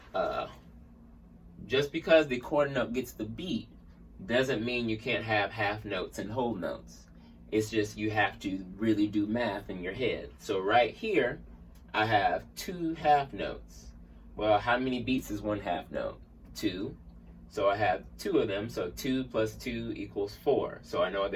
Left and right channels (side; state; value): both; identical; correlation 1.00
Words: just because the quarter note gets the beat doesn't mean you can't have half notes and whole notes. It's just you have to really do math in your head. So right here, I have 2 half notes. Well, how many beats is 1 half note? 2. So I have 2 of them, so 2 plus 2 equals 4. So I know